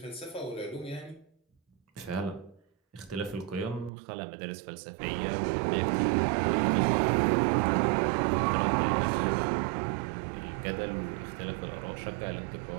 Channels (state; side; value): drops out; left; at 3.9 s